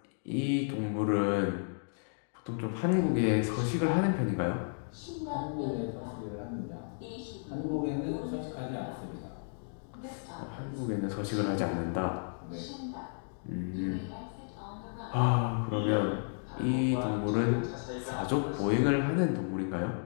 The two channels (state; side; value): silent; right; digital silence